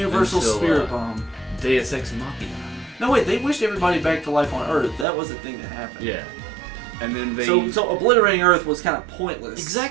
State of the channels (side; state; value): left; drops out; at 5.1 s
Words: Until, Spirit Bomb. Deus Ex Machina. No, wait, they wished everybody back to life on Earth. That was the thing that happened. Yeah. And then they... So obliterating Earth was kind of pointless.